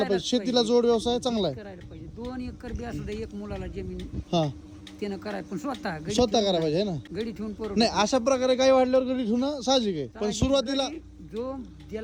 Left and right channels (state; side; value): identical; both; correlation 1.00